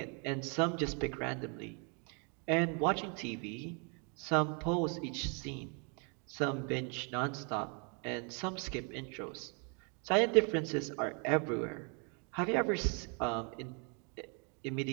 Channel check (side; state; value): left; quieter; 36.6 dB